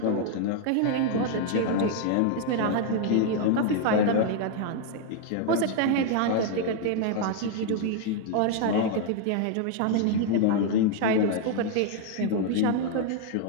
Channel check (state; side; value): different; both; correlation 0.00